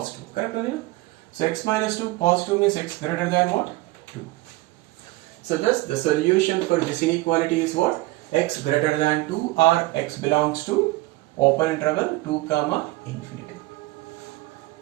Correct? So x minus 2 positive means x greater than what? 2. So thus the solution for this inequality is what? X greater than 2 or x belongs to open interval 2 comma infinity.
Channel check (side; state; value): left; quieter; 19.8 dB